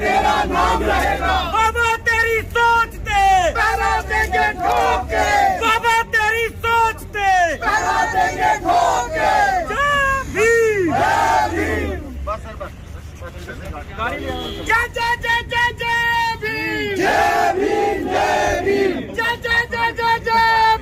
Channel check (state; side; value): identical; both; correlation 1.00